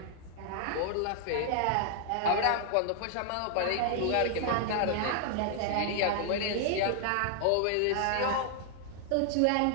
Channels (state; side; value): different; both; correlation 0.00